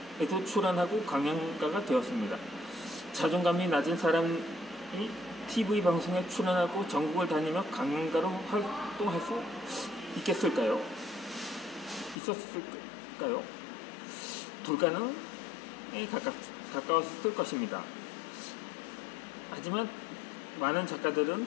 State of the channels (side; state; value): right; drops out; at 12.2 s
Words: 출연하고 강연가가 되었습니다. 자존감이 낮은 사람이 TV 방송에 출연하고 전국을 다니며 강연가로 활동할 수 있었을까요? 불가능에 가까웠을 것입니다. 하지만 많은